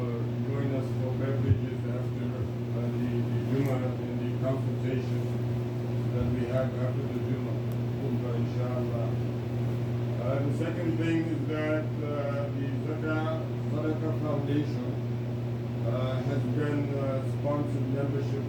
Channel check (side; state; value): both; identical; correlation 1.00